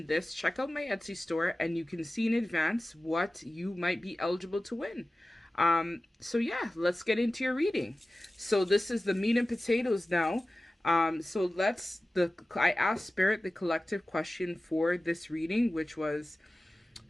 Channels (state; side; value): normal; both; correlation 0.96